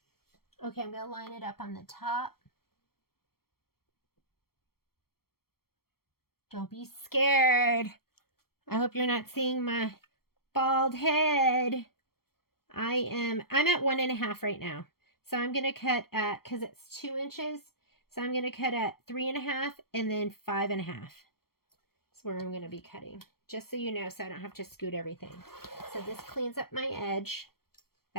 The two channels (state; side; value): late; right; 0.94 ms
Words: Okay, I'm going to line it up on the top. Don't be scared. I hope you're not seeing my bald head. I'm at 1.5 right now. So I'm going to cut at, because it's 2 inches, so I'm going to cut at 3.5 and then 5.5. That's where I'm going to be cutting. Just so you know, so I don't have to scoot everything. So this cleans up my edge.